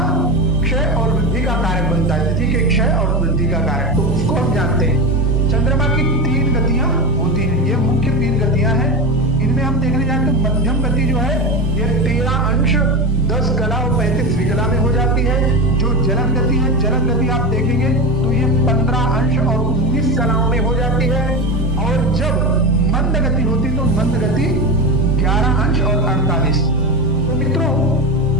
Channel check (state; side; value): normal; both; correlation 0.20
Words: क्षय और वृद्धि का कारक बनता है, तिथि के क्षय और वृद्धि का कारक। तो उसको हम जानते हैं। चंद्रमा की 3 गतियां होती हैं, ये मुख्य 3 गतियां हैं। इनमें हम देखने जाए तो मध्यम गति जो है ये 13 अंश 10 कला और 35 विकला में हो जाती है। जो जलन गति है, जलन गति आप देखेंगे तो ये 15 अंश और 19 कलाओं में हो जाती है। और जब मंद गति होती तो मंद गति 11 अंश और 48। तो मित्रों